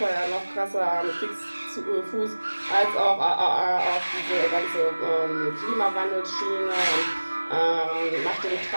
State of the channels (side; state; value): both; inverted; correlation -1.00